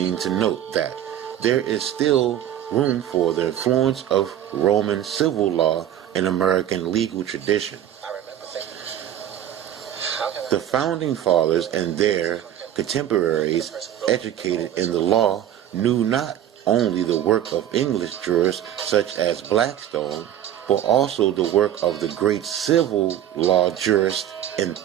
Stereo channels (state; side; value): quieter; left; 11.1 dB